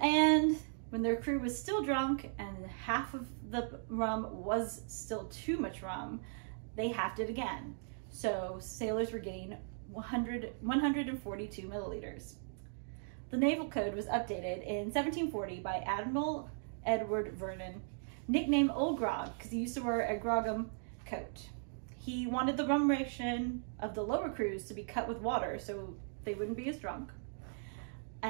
And when their crew was still drunk and half of the rum was still too much rum, they halved it again. So sailors were getting 142 milliliters. The Naval Code was updated in 1740 by Admiral Edward Vernon, nicknamed Old Grog because he used to wear a grogram coat. He wanted the rum ration of the lower crews to be cut with water so they wouldn't be as drunk.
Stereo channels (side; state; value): left; silent; digital silence